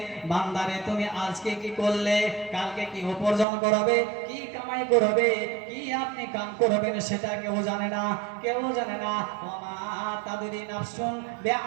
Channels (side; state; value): left; drops out; at 3.5 s